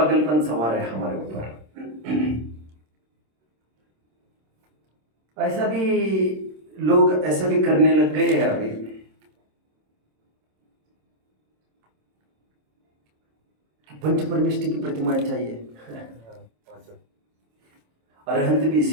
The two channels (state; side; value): late; left; 26 ms